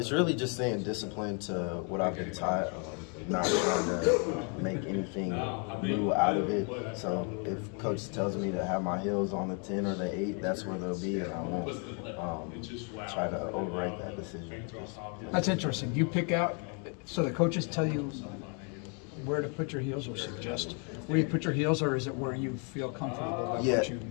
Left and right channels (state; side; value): quieter; right; 37.7 dB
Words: really just staying disciplined to what I've been taught. Not trying to make anything new out of it. So if coach tells me to have my heels on the 10 or the 8, that's where they'll be, and I won't try to override that decision. That's interesting. You pick out, so the coaches tell you where to put your heels or suggest where you put your heels, or is it where you feel comfortable about what you